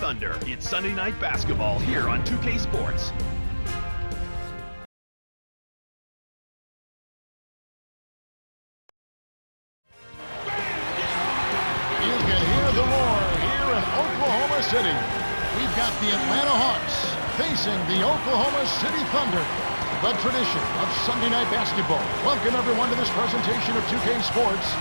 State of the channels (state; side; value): inverted; both; correlation -1.00